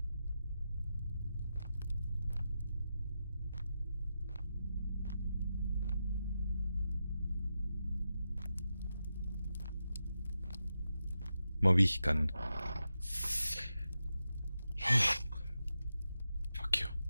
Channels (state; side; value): inverted; both; correlation -0.89